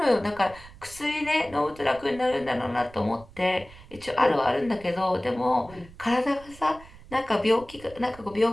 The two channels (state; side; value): noise; right; rumble, 21 dB below the sound